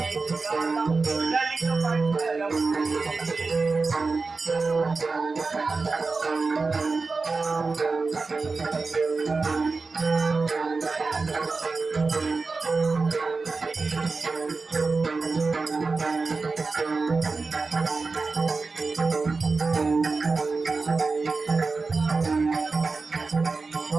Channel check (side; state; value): left; quieter; 4.1 dB